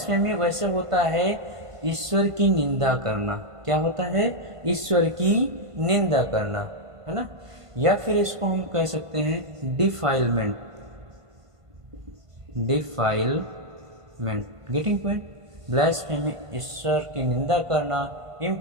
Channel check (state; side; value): late; left; 1.5 ms